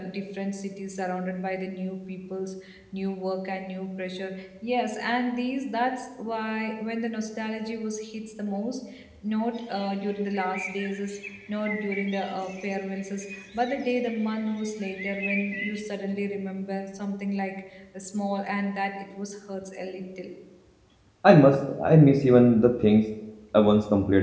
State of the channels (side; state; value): both; identical; correlation 1.00